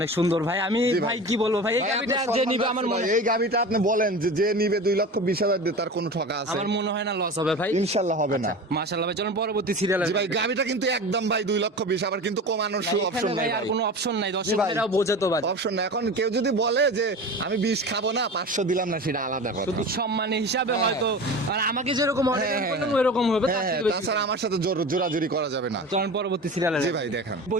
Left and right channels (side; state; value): both; normal; correlation 0.32